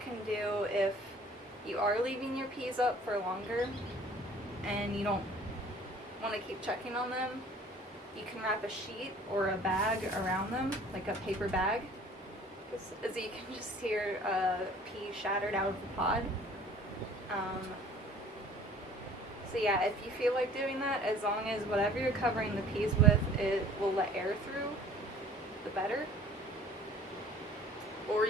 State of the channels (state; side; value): normal; both; correlation 0.50